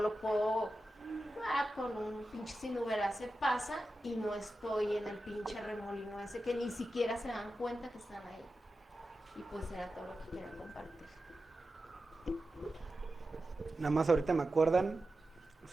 puedo, con un pinche sinubera se pasa y no estoy en el pinche remolino ese que ni siquiera se dan cuenta que están ahí. Y pues era todo lo que quería compartir. Nada más ahorita me acuerdan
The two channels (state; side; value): normal; both; correlation 0.92